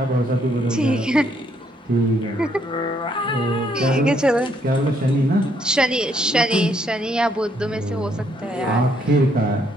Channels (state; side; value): normal; both; correlation 0.70